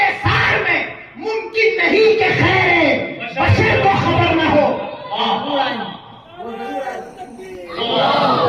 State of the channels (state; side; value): identical; both; correlation 1.00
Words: سار میں، ممکن نہیں کہ خیر بشر کو خبر نہ ہو۔